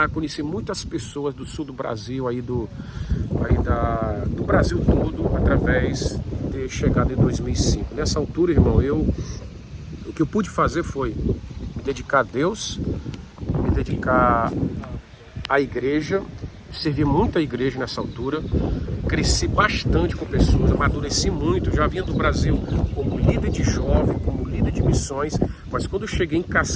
Conheci muitas pessoas do sul do Brasil, do Brasil todo, através de chegada em 2005. Nessa altura, irmão, o que eu pude fazer foi me dedicar a Deus, me dedicar à igreja, servi muito a igreja nessa altura, cresci bastante com pessoas, amadureci muito, já vinha do Brasil como líder de jovem, como líder de missões, mas quando eu cheguei em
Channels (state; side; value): identical; both; correlation 1.00